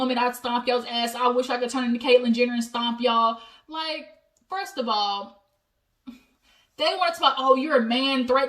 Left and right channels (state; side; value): identical; both; correlation 1.00